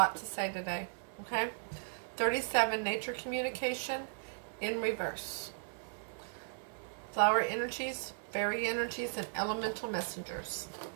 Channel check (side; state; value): left; silent; digital silence